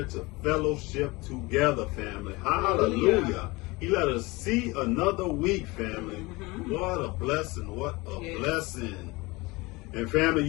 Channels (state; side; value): quieter; right; 23.3 dB